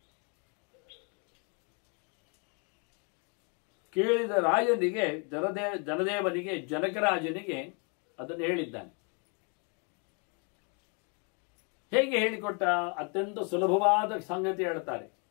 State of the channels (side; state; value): right; quieter; 36.1 dB